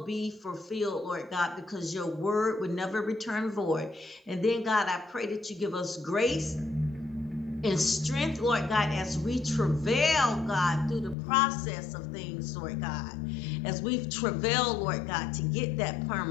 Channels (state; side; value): drops out; right; at 11.2 s